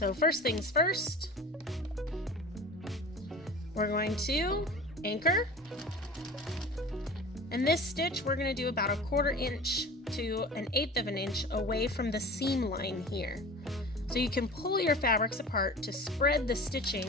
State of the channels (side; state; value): both; normal; correlation 0.38